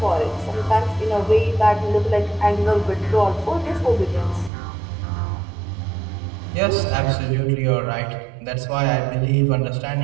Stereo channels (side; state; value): left; drops out; at 4.5 s